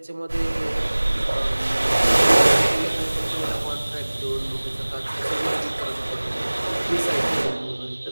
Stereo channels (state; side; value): inverted; both; correlation -1.00